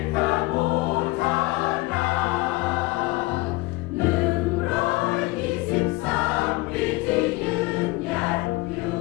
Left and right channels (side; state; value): right; quieter; 21.2 dB